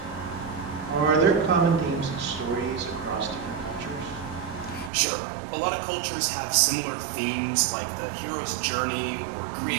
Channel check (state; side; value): drops out; left; at 4.9 s